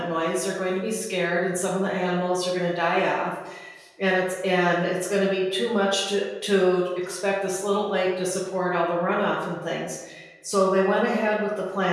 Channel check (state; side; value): identical; both; correlation 1.00